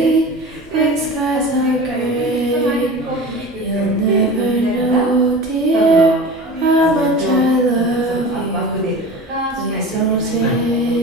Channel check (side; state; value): both; normal; correlation 0.34